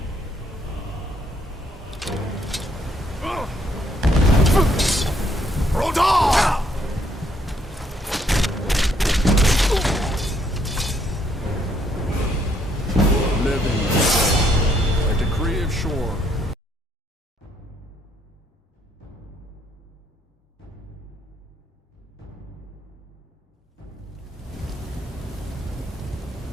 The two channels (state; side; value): normal; both; correlation 0.70